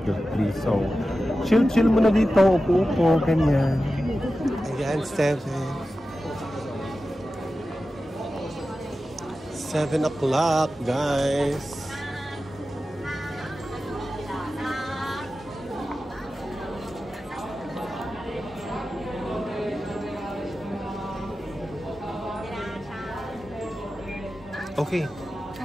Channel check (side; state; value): both; normal; correlation 0.93